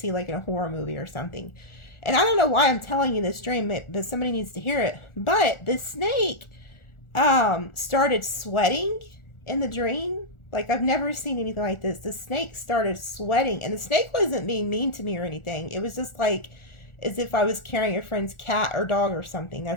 like in a horror movie or something. And I don't know why I'm telling you this dream, but somebody needs to hear it. But the snake started sweating in the dream. Like, I've never seen anything like this. The snake started sweating, and the snake wasn't being mean to me or anything. It was just like as if I was carrying a friend's cat or dog or something.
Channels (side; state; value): right; late; 1.4 ms